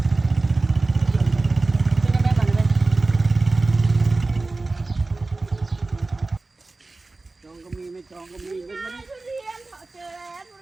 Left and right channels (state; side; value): quieter; left; 3.3 dB